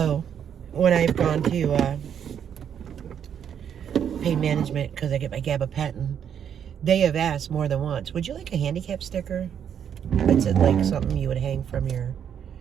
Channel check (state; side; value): quieter; left; 8.5 dB